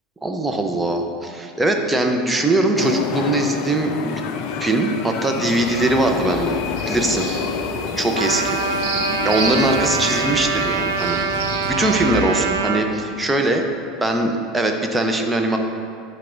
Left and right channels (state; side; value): normal; both; correlation 0.41